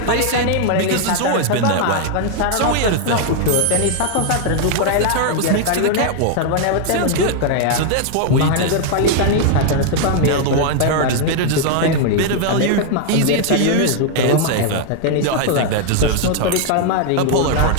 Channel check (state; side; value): different; both; correlation 0.00